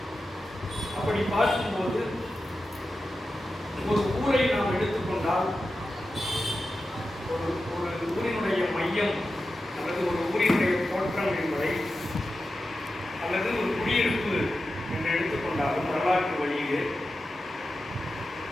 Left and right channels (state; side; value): normal; both; correlation 0.92